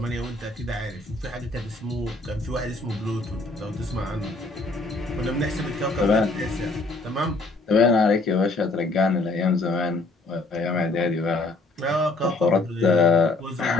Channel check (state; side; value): quieter; right; 3.1 dB